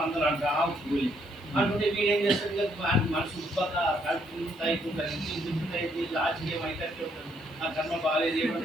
అందరూ అంటా కూలి అంటుంటే వీడేం చేస్తుంది మనసు ఉత్పత్త కలుపుతుంది లాస్ట్ ఏమైతే ఆ కర్మ బాగాలేదు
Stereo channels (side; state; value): right; noise; hiss, 30 dB below the sound